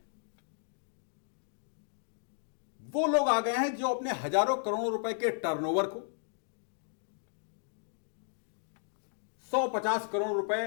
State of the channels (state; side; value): silent; right; digital silence